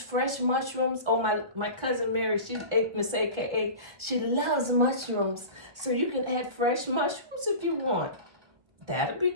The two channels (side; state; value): left; late; 1.4 ms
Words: mushrooms, my cousin Mary, she's Miss AKA, she loves mushrooms. So you can add fresh mushrooms if you want.